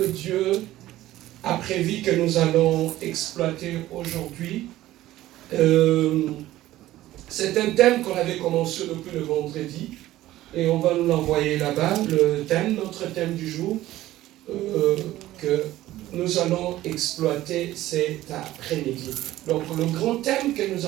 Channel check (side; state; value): left; quieter; 15.2 dB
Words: Dieu a prévu que nous allons exploiter aujourd'hui, c'est un thème qu'on avait commencé depuis le vendredi et on va nous l'envoyer là-bas. Le thème, notre thème du jour que nous allons exploiter cet après-midi. Donc le grand thème que nous